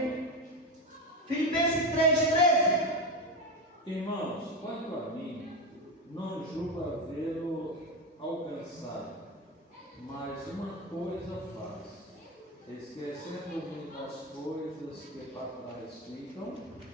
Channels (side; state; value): both; normal; correlation 0.16